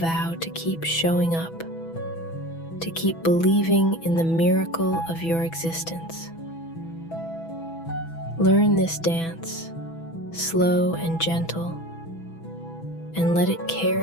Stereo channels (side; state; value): right; late; 6.1 ms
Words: to keep showing up, to keep believing in the miracle of your existence. Learn this dance, slow and gentle, and let it